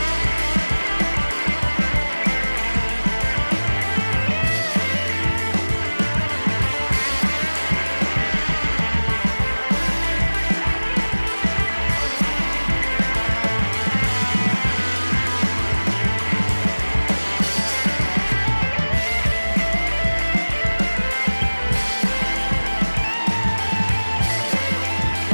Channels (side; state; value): both; inverted; correlation -1.00